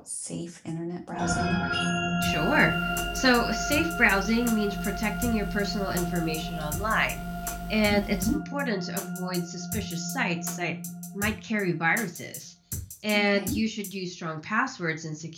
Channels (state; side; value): identical; both; correlation 1.00